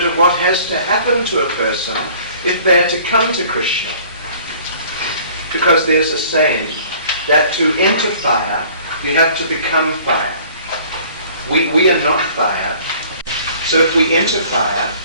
of what has to happen to a person if they're to come to Krishna. Because there's a saying that to enter fire, you have to become fire. We are not fire. So if we enter fire,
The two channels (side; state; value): both; inverted; correlation -0.52